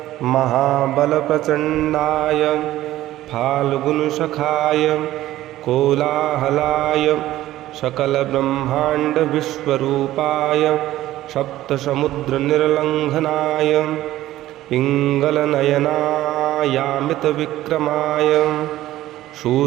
महाबलप्रचण्डाय फाल्गुनसखाय कोलाहलाय सकलब्रह्माण्डविश्वरूपाय सप्तसमुद्रनिर्लङ्घनाय पिङ्गलनयनायामितविक्रमाय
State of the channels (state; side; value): quieter; left; 14.8 dB